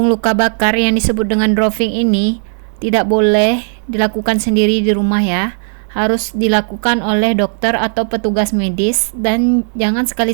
luka bakar yang disebut dengan drawing ini tidak boleh dilakukan sendiri di rumah ya. Harus dilakukan oleh dokter atau petugas medis, dan jangan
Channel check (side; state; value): left; silent; digital silence